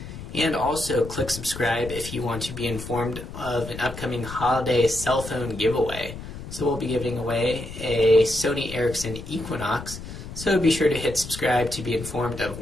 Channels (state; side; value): noise; left; rumble, 11 dB below the sound